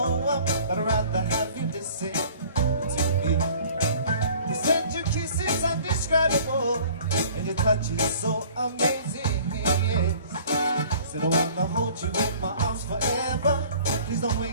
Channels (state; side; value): inverted; both; correlation -0.50